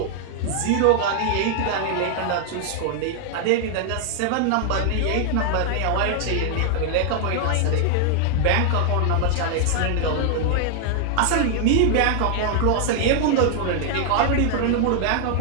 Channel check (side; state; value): both; different; correlation 0.00